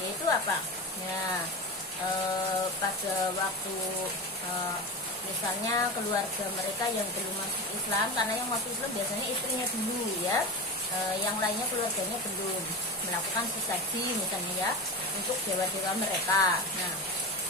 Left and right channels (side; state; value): both; normal; correlation 0.24